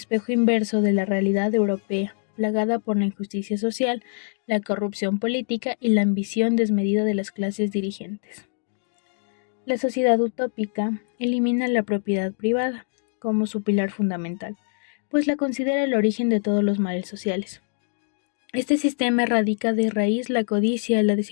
inverso de la realidad europea, plagada por la injusticia social, la corrupción política y la ambición desmedida de las clases dirigentes. La sociedad utópica elimina la propiedad privada como su pilar fundamental, pues la considera el origen de todos los males sociales. Este sistema erradica de raíz la codicia, la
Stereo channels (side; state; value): right; silent; digital silence